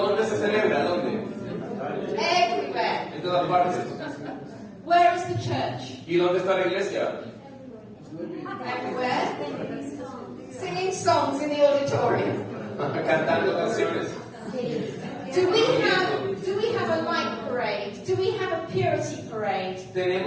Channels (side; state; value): both; identical; correlation 1.00